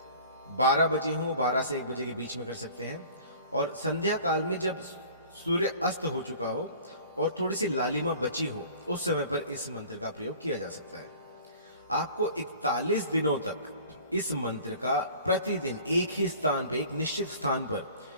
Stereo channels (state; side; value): inverted; both; correlation -0.46